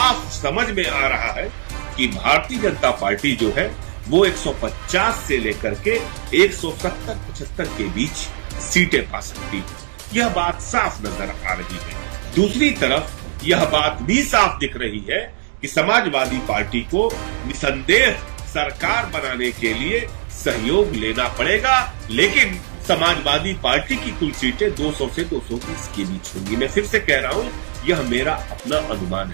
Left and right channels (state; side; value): silent; left; digital silence